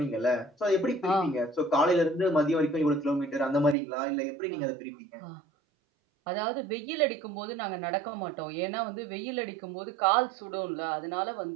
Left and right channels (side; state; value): left; drops out; at 3.8 s